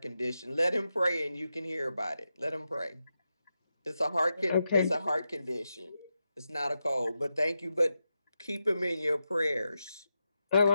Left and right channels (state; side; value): inverted; both; correlation -0.89